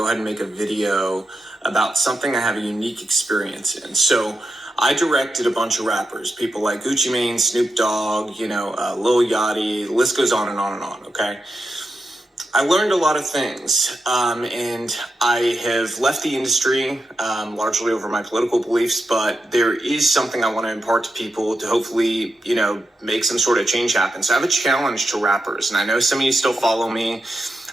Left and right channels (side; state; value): both; normal; correlation 0.88